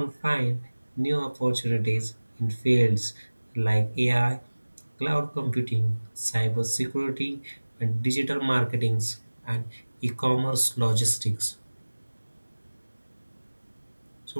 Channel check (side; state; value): both; inverted; correlation -1.00